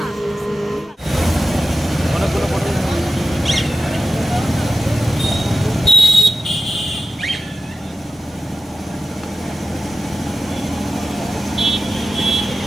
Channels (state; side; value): normal; both; correlation 0.94